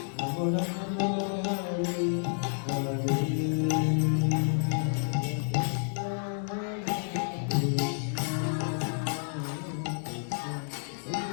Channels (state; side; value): silent; right; 58 dB below the other